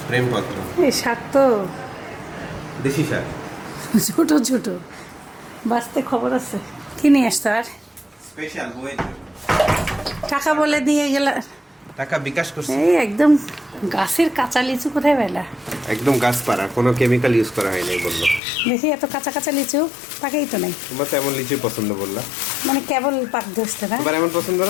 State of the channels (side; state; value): right; drops out; at 18.4 s